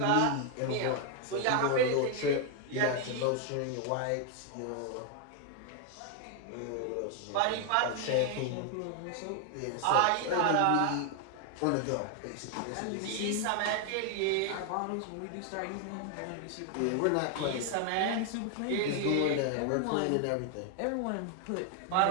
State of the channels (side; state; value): both; different; correlation 0.00